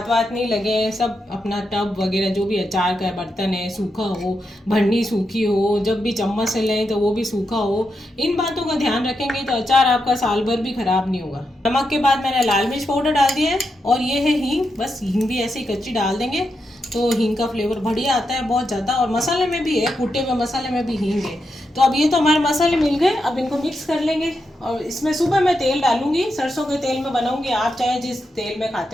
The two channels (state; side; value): normal; both; correlation 0.85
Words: वाथ नहीं लगे, सब अपना टब वगैरह जो भी अचार का बर्तन है सूखा हो, भरनी सूखी हो, जब भी चम्मच से लें तो वो भी सूखा हो, इन बातों का ध्यान रखेंगे तो अचार आपका साल भर भी ख़राब नहीं होगा। नमक के बाद मैंने लाल मिर्च पाउडर डाल दिया है, और ये है हींग, बस हींग भी ऐसे ही कच्ची डाल देंगे, तो हींग का फ्लेवर बढ़िया आता है बहुत ज़्यादा। और मसाले में भी है, कूटे हुए मसाले में भी हींग है। तो अब ये तो हमारे मसाले मिल गए, अब इनको मिक्स कर लेंगे। और इसमें सुबह मैं तेल डालूंगी, सरसों के तेल में बनाऊंगी, आप चाहे जिस तेल में